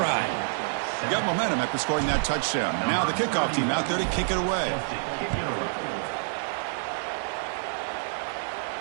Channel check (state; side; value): silent; left; digital silence